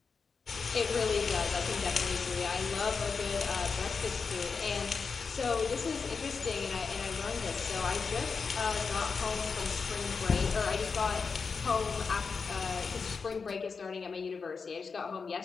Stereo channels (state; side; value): quieter; right; 5.1 dB